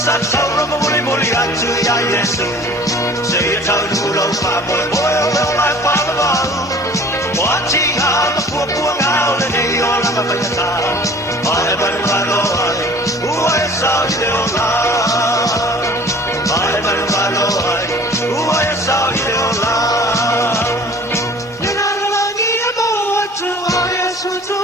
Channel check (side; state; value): both; normal; correlation 0.47